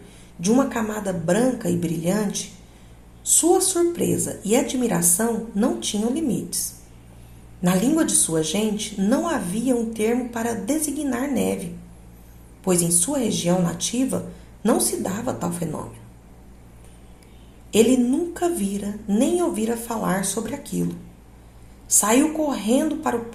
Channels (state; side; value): identical; both; correlation 1.00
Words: de uma camada branca e brilhante, sua surpresa e admiração não tinham limites. Na língua de sua gente não havia um termo para designar neve, pois em sua região nativa não se dava tal fenômeno. Ele nunca vira nem ouvira falar sobre aquilo. Saiu correndo para o